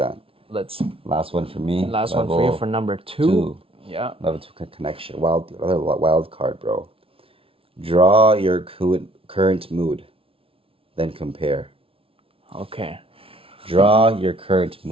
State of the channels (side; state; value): left; late; 0.26 ms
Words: Let's Last one for me. last one for you for number 2. 2. Yeah. Level 2 connection. Another wild card, bro. Draw your current mood, then compare. Okay. Draw your current